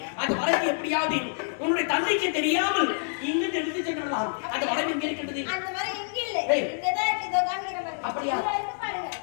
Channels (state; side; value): silent; right; 58 dB below the other